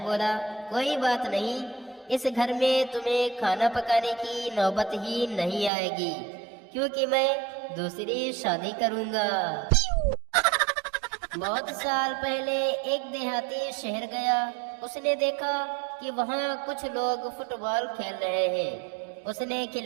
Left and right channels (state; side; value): drops out; left; at 5.7 s